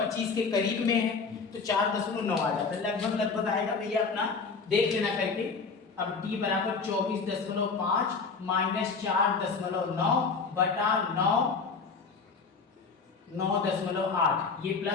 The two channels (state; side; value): quieter; right; 4.8 dB